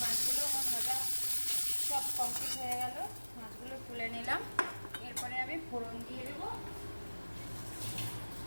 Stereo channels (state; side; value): inverted; both; correlation -1.00